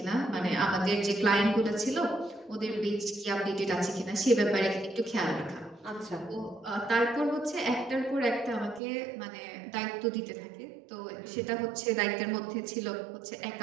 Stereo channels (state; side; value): drops out; left; at 8.8 s